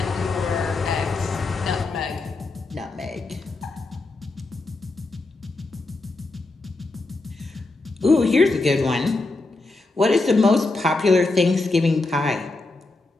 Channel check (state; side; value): quieter; right; 3.2 dB